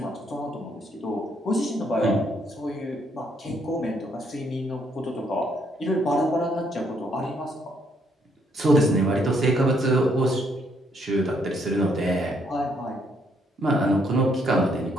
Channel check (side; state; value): both; normal; correlation 0.71